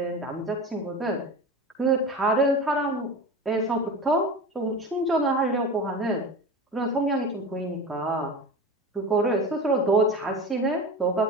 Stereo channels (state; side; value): normal; both; correlation 0.30